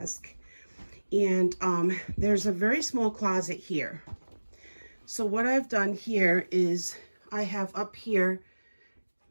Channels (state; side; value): inverted; both; correlation -1.00